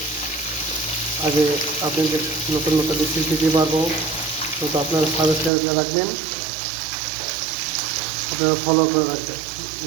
আগে আপনাদের নতুন নতুন রেসিপি দিতে পারবো, তো আপনারা সাবস্ক্রাইব করে রাখবেন, আপনারা ফলো করে রাখবেন।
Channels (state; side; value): drops out; left; at 5.5 s